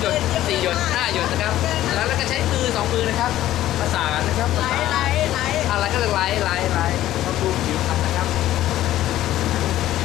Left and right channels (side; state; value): right; quieter; 13.8 dB